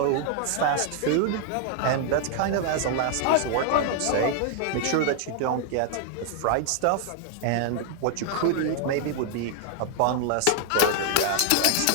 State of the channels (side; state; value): both; different; correlation 0.00